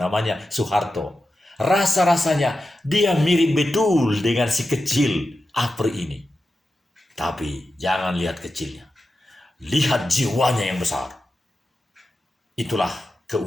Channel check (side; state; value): both; normal; correlation 0.91